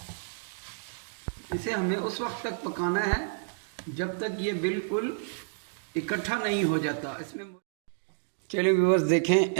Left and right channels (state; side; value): silent; left; digital silence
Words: इसे हमें उस वक्त तक पकाना है जब तक ये बिल्कुल इकट्ठा नहीं हो जाता। इसमें चलिए व्यूअर्स,